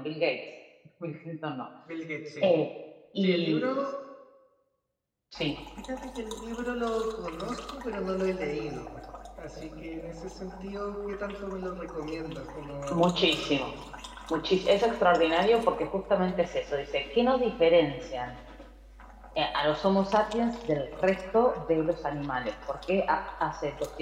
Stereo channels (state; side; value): identical; both; correlation 1.00